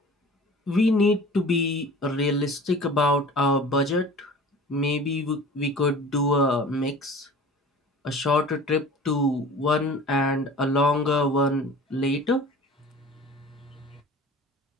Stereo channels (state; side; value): normal; both; correlation 0.41